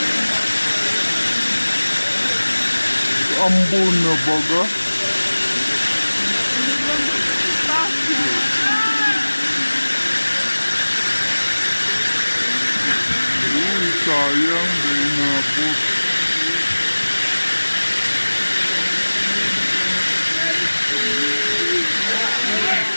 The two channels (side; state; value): both; inverted; correlation -1.00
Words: Ambon na baga. Uy, sayang, dahil nabot.